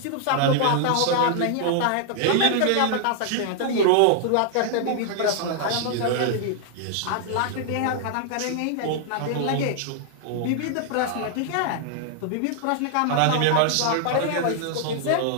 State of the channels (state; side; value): different; both; correlation 0.00